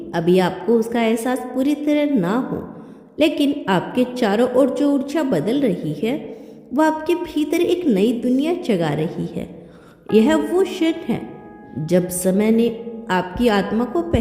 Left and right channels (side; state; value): both; identical; correlation 1.00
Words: अभी आपको उसका एहसास पूरी तरह ना हो, लेकिन आपके चारों ओर जो ऊर्जा बदल रही है वह आपके भीतर एक नई दुनिया जगा रही है। यह वो क्षण है जब समय ने आपकी आत्मा को